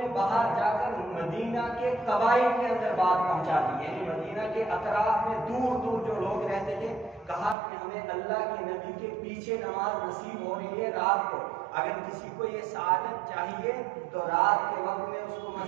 باہر جا کر مدینہ کے قبائل کے اندر بات پہنچا دی، یعنی مدینہ کے اطراف میں دور دور جو لوگ رہتے تھے، کہا کہ ہمیں اللہ کے نبی کے پیچھے نماز نصیب ہو رہی ہے رات کو، اگر کسی کو یہ سعادت چاہیے تو رات کے وقت میں اس کو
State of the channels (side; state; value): left; drops out; at 7.6 s